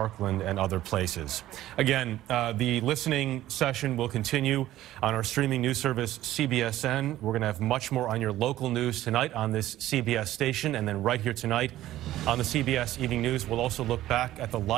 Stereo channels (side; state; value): left; quieter; 14.3 dB